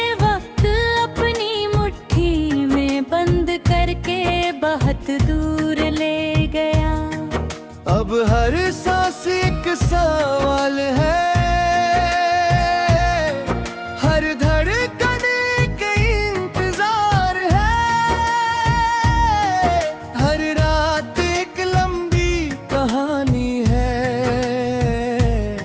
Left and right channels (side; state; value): both; identical; correlation 1.00